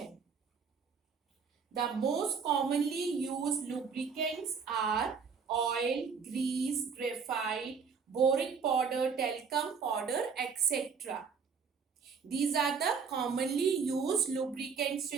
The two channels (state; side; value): quieter; left; 5.8 dB